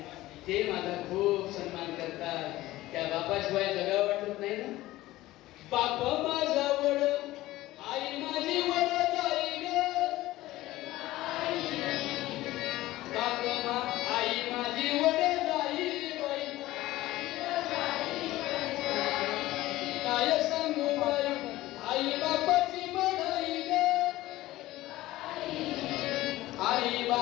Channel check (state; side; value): quieter; right; 16.9 dB